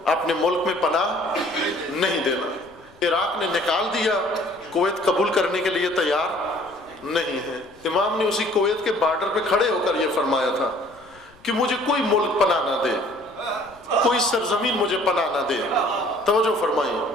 اپنے ملک میں پناہ نہیں دینا. عراق نے نکال دیا، کویت قبول کرنے کے لیے تیار نہیں ہے. امام نے اسی کویت کے بارڈر پہ کھڑے ہو کر یہ فرمایا تھا کہ مجھے کوئی ملک پناہ نہ دے، کوئی سرزمین مجھے پناہ نہ دے. توجہ فرمائیں،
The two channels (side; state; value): left; noise; rumble, 28 dB below the sound